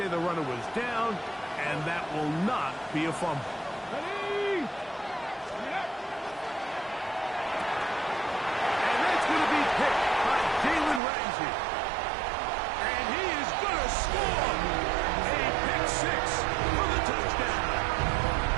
the runner was down, and that will not be a fumble. Ready? And that's going to be picked by Jalen Ramsey. And he is going to score a pick six for the touchdown.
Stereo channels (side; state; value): left; drops out; at 11.0 s